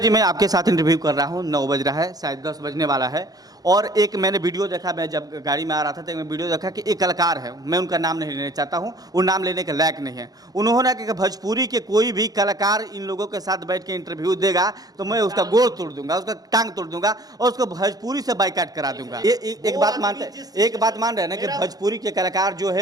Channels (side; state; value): left; late; 0.18 ms